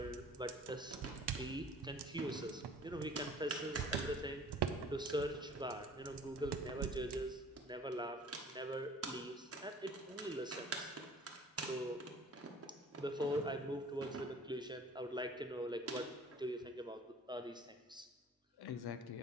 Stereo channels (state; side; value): normal; both; correlation 0.49